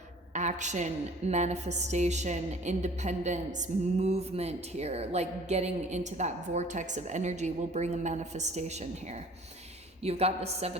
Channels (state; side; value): normal; both; correlation 0.50